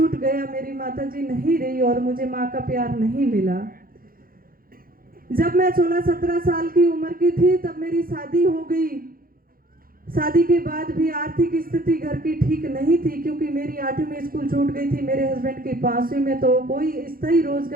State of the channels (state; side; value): late; left; 0.42 ms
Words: गया, मेरी माताजी नहीं रही और मुझे माँ का प्यार नहीं मिला। जब मैं 16-17 साल की उम्र की थी तब मेरी शादी हो गई। शादी के बाद भी आर्थिक स्थिति घर की ठीक नहीं थी, क्योंकि मेरी 8वीं में स्कूल छूट गई थी, मेरे हस्बैंड की 5वीं में, तो कोई स्थायी